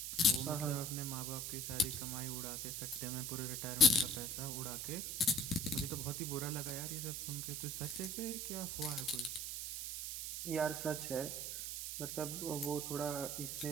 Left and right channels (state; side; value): noise; right; hiss, 4 dB below the sound